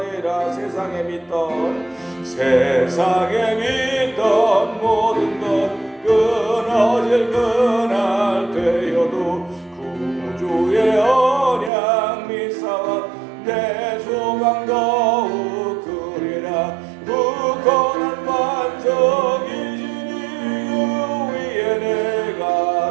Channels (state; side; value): drops out; left; at 11.7 s